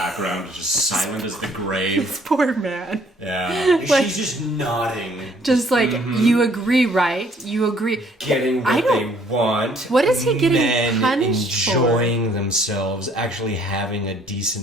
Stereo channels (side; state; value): both; normal; correlation 0.61